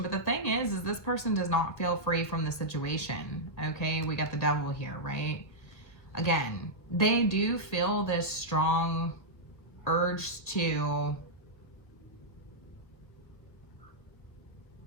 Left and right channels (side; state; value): right; late; 1.6 ms